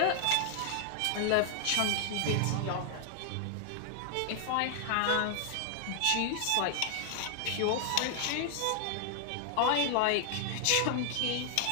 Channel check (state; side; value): different; both; correlation 0.00